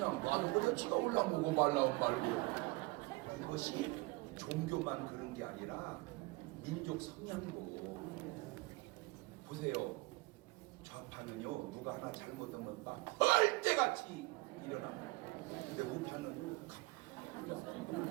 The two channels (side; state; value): left; quieter; 23.8 dB